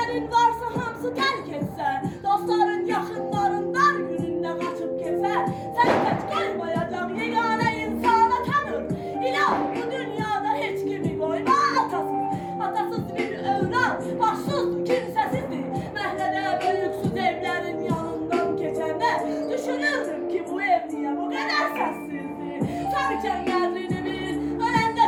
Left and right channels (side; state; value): both; identical; correlation 1.00